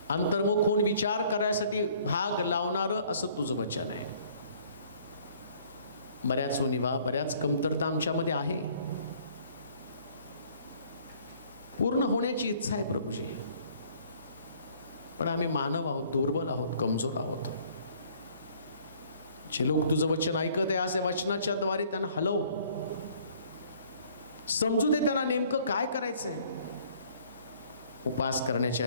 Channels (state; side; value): inverted; both; correlation -0.58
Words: अंतर्मुख होऊन विचार करायसाठी भाग लावणारं असं तुझं वचन आहे. बऱ्याच उणिवा, बऱ्याच कमतरता आमच्यामध्ये आहे. पूर्ण होण्याची इच्छा आहे प्रभूजी, पण आम्ही मानव आहोत, दुर्बल आहोत, कमजोर आहोत. जे लोक तुझं वचन ऐकत आहे आज या वचनाच्या द्वारे त्यांना हलव, समजू दे त्यांना नेमकं काय करायचंय. उपास करण्याच्या